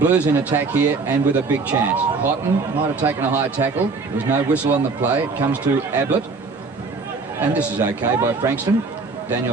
in attack here, and with a big chance. Houghton might have taken a high tackle. There was no whistle on the play. It comes to Ablett, and this is okay by Frankston.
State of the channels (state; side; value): quieter; left; 4.2 dB